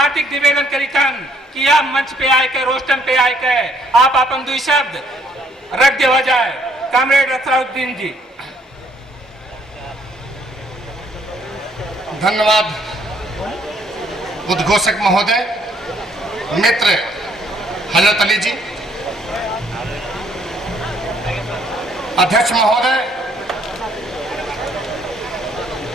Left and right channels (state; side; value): normal; both; correlation 0.65